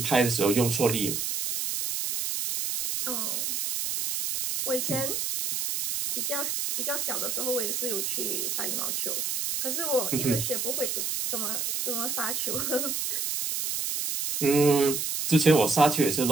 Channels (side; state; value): right; noise; hiss, 1 dB below the sound